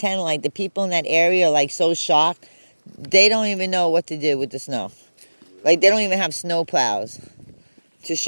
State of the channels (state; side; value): inverted; both; correlation -1.00